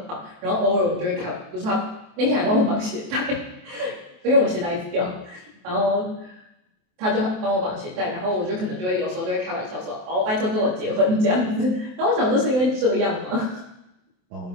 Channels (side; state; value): left; late; 27 ms